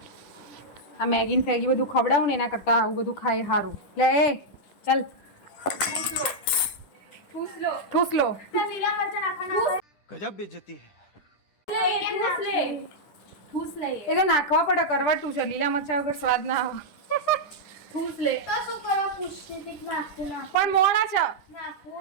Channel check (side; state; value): right; late; 10 ms